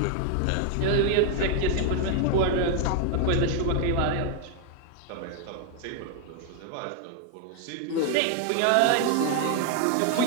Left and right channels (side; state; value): both; different; correlation 0.00